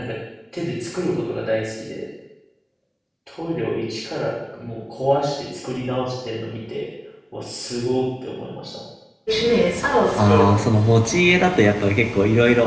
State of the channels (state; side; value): identical; both; correlation 1.00